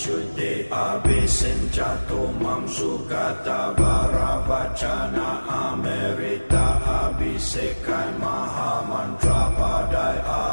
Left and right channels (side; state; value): both; inverted; correlation -1.00